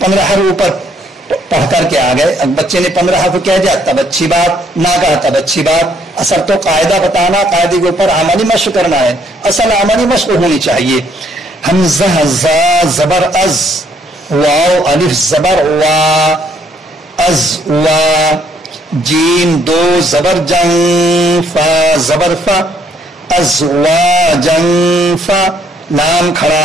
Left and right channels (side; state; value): both; normal; correlation 0.68